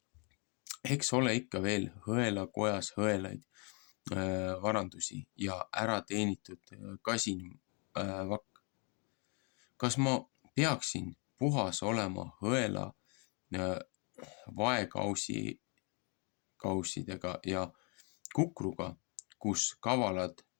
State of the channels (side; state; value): right; quieter; 35.3 dB